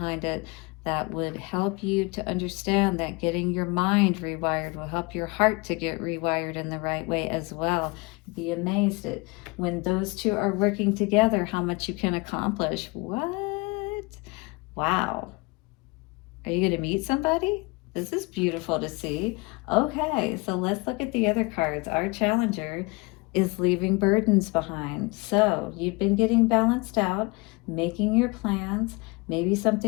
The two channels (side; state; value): right; quieter; 26.5 dB